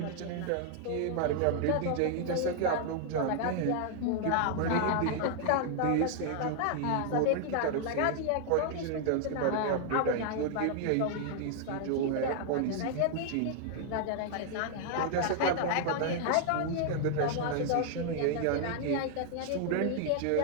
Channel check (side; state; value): both; different; correlation 0.00